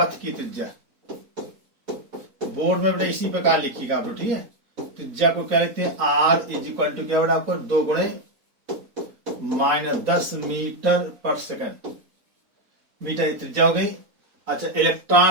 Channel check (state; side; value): late; left; 4.1 ms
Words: की त्रिज्या बोर्ड में बेटा इसी प्रकार लिखिएगा आप लोग, ठीक है। त्रिज्या को क्या लिखते हैं, आर इज इक्वल टू क्या बेटा आपको 2 गुणे -10 मीटर पर सेकंड। मीटर की त्रिज्या हो गई। अच्छा,